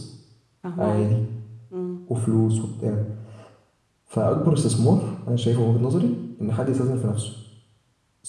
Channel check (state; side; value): identical; both; correlation 1.00